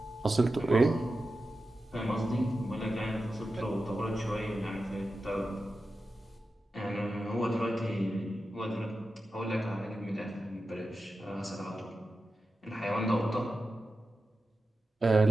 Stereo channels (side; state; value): both; normal; correlation 0.92